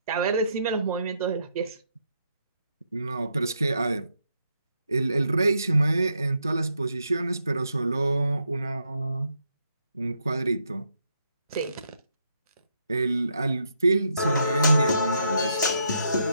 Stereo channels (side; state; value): both; inverted; correlation -0.78